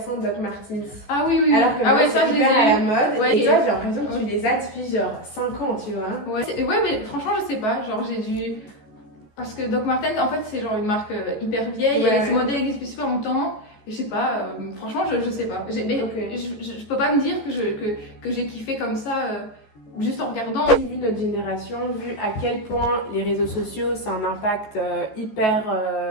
Doc Martens. Ah oui. Alors que ça je les ai à la mode. Et toi j'ai l'impression que tu les les as depuis genre 5 ans, tu vois. Ouais, mais franchement je sais pas, genre j'ai dû. Parce que Doc Martens, en fait, c'est genre une marque hyper vieille, ce modèle existe depuis super longtemps, et je sais pas, franchement, je sais pas. Mais je peux pas me dire que j'ai kiffé comme ça, juste en regardant. Vu notre génération, vu à quel point les réseaux sociaux, c'est un impact hyper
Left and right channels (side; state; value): right; late; 14 ms